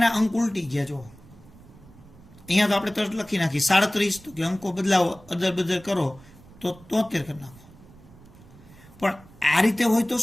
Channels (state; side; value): noise; right; rumble, 23 dB below the sound